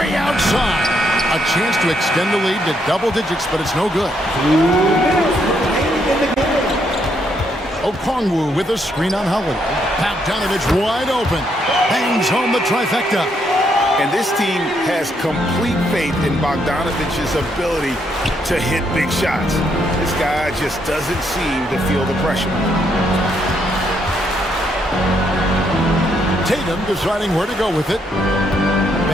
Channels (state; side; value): normal; both; correlation 0.75